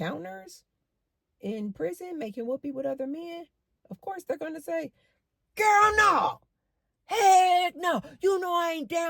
in prison making whoopee with other men? Of course they're going to say, girl, no. Heck no. You know I ain't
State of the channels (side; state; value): both; identical; correlation 1.00